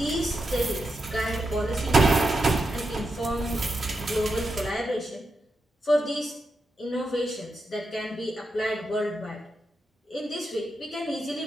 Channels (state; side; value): normal; both; correlation 0.86